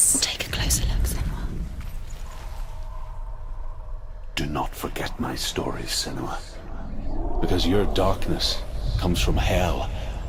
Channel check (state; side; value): identical; both; correlation 1.00